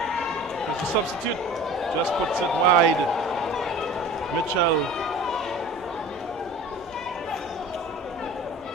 There's the substitute. Just puts it wide. Mitchell.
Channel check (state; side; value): normal; both; correlation 0.41